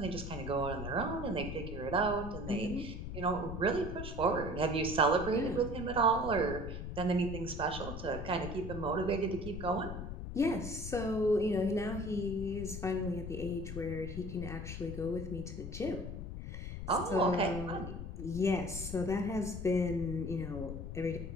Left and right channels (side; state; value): left; noise; rumble, 7 dB below the sound